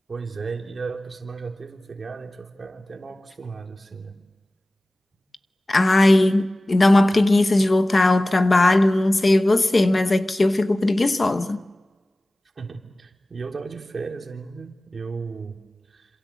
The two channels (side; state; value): both; normal; correlation 0.97